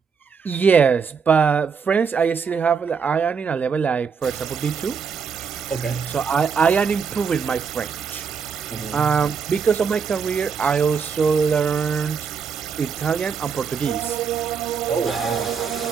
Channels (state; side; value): quieter; left; 6.1 dB